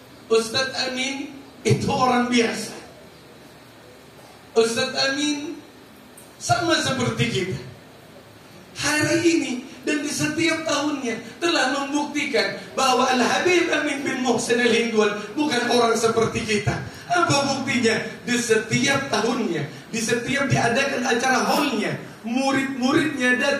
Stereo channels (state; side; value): identical; both; correlation 1.00